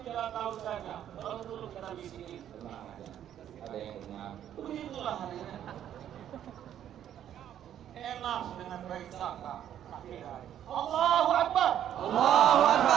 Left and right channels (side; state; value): left; quieter; 10.5 dB